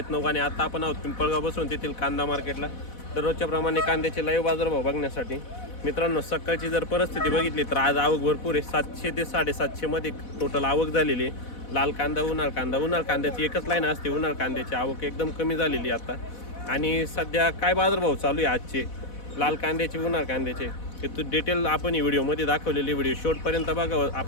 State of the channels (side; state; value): right; late; 4.1 ms